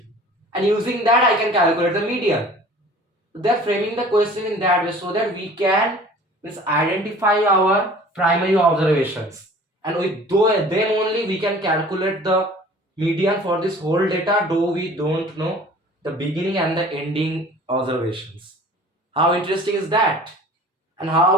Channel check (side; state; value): both; normal; correlation 0.47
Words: And using that I can calculate the median. They're framing the question in that way so that we can identify our primary observations. And with them only we can calculate the median for this whole data, though we don't know the beginning and the ending observations. How interesting is that? And